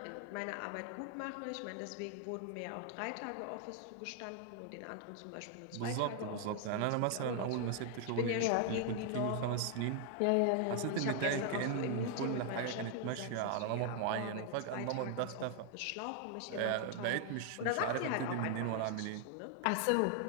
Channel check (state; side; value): different; both; correlation 0.00